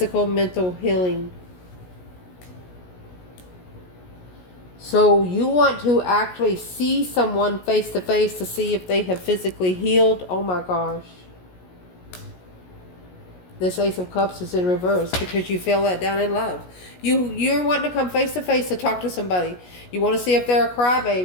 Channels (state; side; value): late; right; 17 ms